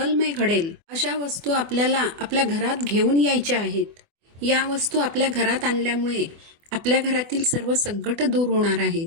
घडेल, अशा वस्तू आपल्याला आपल्या घरात घेऊन यायच्या आहेत. या वस्तू आपल्या घरात आणल्यामुळे आपल्या घरातील सर्व संकट दूर होणार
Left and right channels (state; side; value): late; left; 24 ms